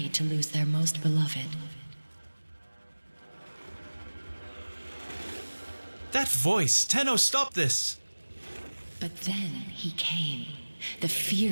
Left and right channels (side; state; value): both; inverted; correlation -1.00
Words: to lose their most beloved. That voice! Tenno, stop this! But then he came, the